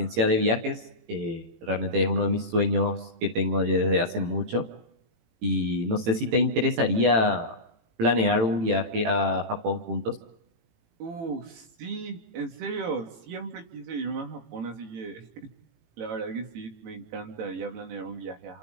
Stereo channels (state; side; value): late; left; 18 ms